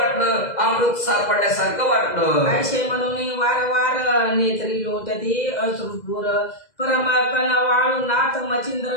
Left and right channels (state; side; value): late; right; 2.0 ms